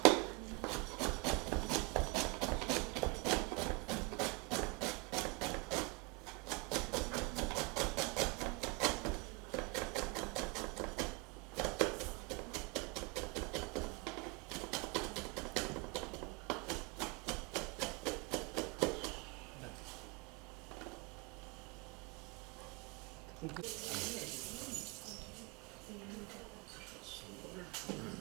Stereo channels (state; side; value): quieter; left; 28.0 dB